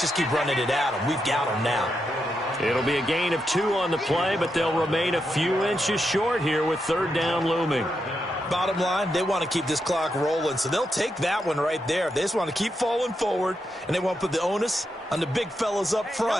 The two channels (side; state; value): both; normal; correlation 0.84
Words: just keep running it at them. We've got them now. It'll be a gain of 2 on the play, but they'll remain a few inches short here with third down looming. Bottom line, they want to keep this clock rolling, so they'll take that one right there. They just want to keep falling forward, and they want to put the onus on the big fellas up